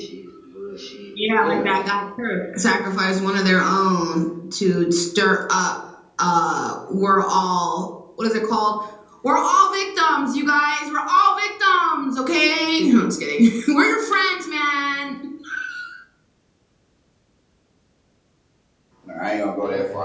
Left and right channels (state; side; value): identical; both; correlation 1.00